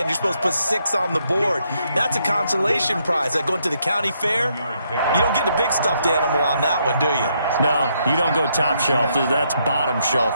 You're supposed to put 6 on the board. That's a consolation prize. Like going to the county fair, you don't get the big stuffed animal on that one, do you? No, you don't go top shelf. That's bottom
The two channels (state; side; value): inverted; both; correlation -0.75